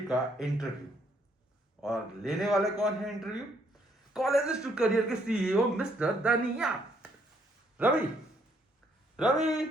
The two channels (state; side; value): normal; both; correlation 0.69